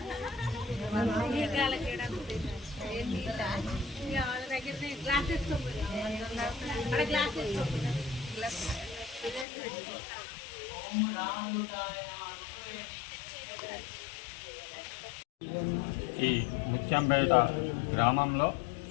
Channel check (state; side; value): drops out; right; at 9.5 s